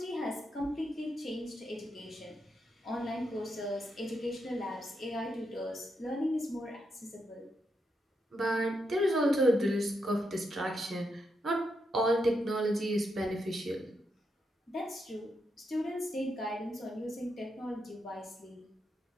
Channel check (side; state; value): both; normal; correlation 0.82